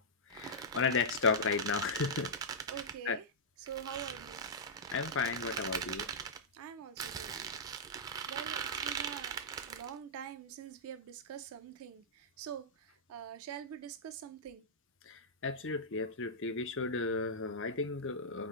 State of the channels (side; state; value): both; normal; correlation -0.11